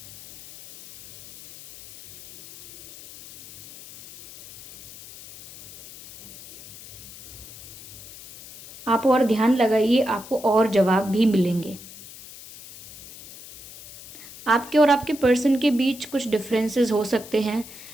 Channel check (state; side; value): noise; left; hiss, 17 dB below the sound